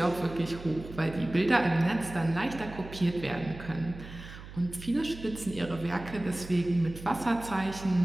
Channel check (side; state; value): right; noise; hum, 14 dB below the sound